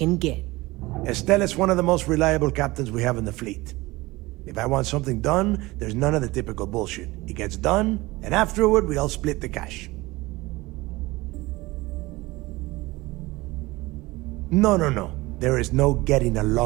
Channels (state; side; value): quieter; left; 20.7 dB